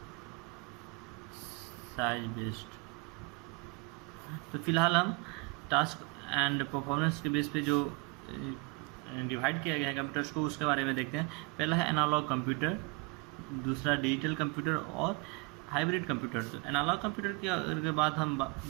साइज बेस्ड। तो फिलहाल हम टास्क एंड परफॉर्मेंस के बेस पे जो डिवाइड किया गया है कंप्यूटर्स को उसके बारे में देखते हैं। पहला है एनालॉग कंप्यूटर, दूसरा डिजिटल कंप्यूटर और हाइब्रिड कंप्यूटर। तो एनालॉग कंप्यूटर के बाद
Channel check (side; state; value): left; quieter; 28.5 dB